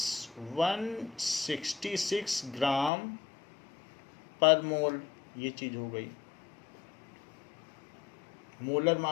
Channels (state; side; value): drops out; right; at 2.9 s